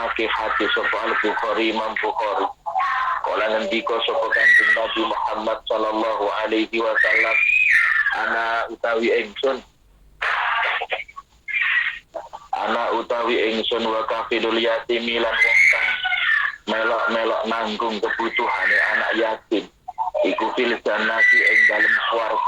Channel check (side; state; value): both; identical; correlation 1.00